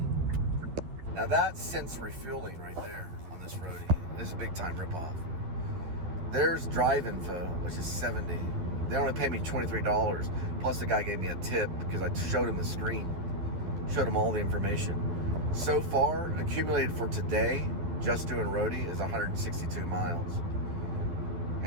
Now that's since refueling right there on this Roadie. This is a big time ripoff. There's drive info, which is $70. They only pay me $23. Plus the guy gave me a tip because I showed him the screen. Showed him all the information. So far, accumulated for today, just doing Roadie, is 162 miles.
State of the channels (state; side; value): late; left; 12 ms